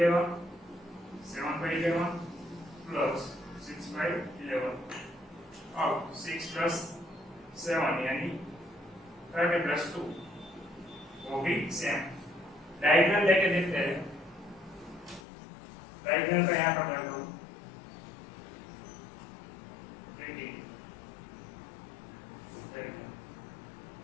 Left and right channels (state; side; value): drops out; right; at 15.2 s